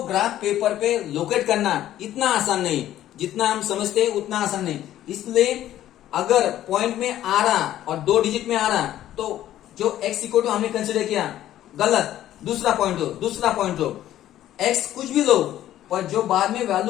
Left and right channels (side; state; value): right; quieter; 12.7 dB